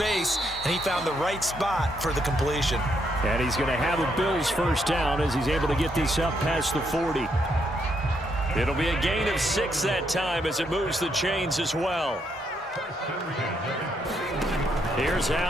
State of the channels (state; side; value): normal; both; correlation 0.76